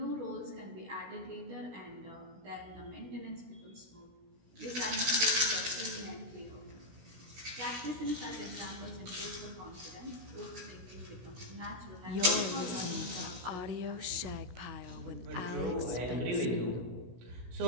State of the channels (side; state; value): left; late; 16 ms